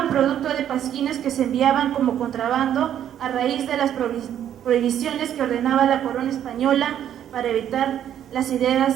producto de pasquines que se enviaban como contrabando a raíz de las prohibiciones que ordenaba la corona española para evitar las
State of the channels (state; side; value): quieter; left; 10.3 dB